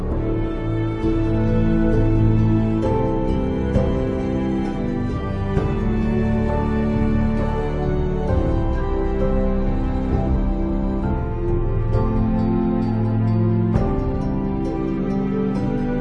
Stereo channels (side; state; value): both; identical; correlation 1.00